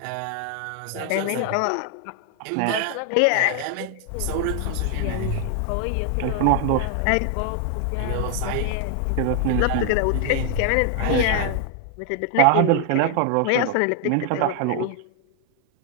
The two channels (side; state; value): both; different; correlation 0.00